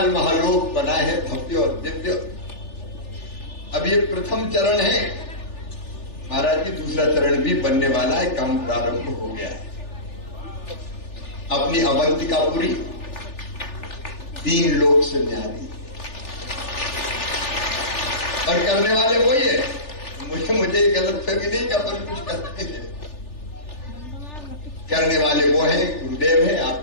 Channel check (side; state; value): right; late; 3.4 ms